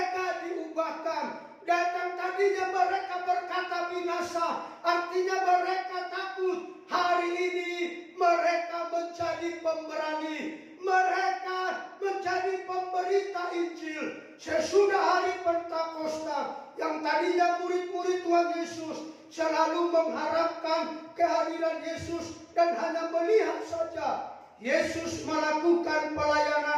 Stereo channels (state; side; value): identical; both; correlation 1.00